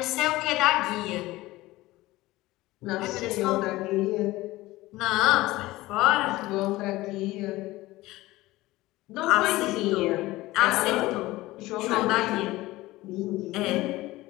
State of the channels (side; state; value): right; quieter; 18.5 dB